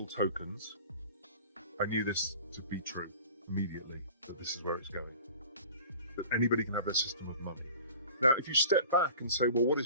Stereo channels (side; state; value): both; inverted; correlation -0.43